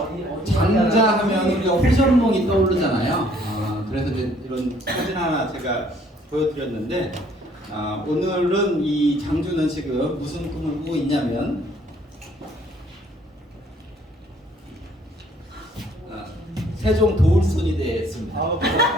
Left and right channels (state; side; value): normal; both; correlation 0.61